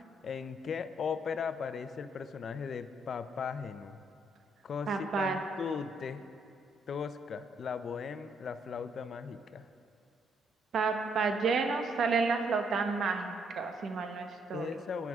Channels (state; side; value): normal; both; correlation 0.72